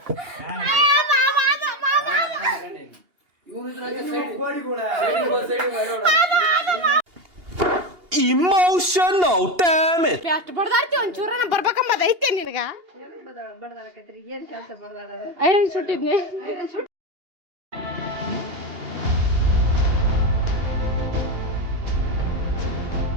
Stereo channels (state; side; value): late; left; 2.8 ms